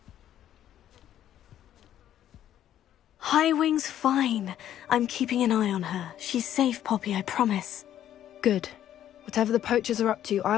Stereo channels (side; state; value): right; quieter; 11.3 dB